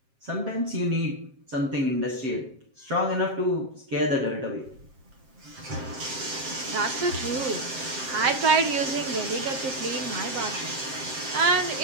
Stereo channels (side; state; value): left; late; 7.5 ms